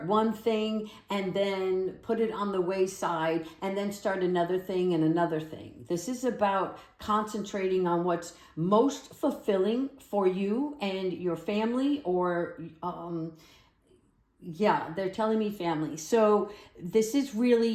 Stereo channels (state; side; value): identical; both; correlation 1.00